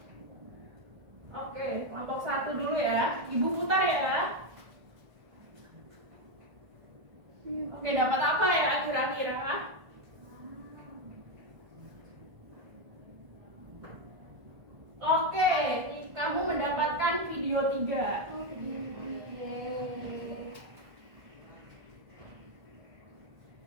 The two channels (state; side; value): late; left; 1.5 ms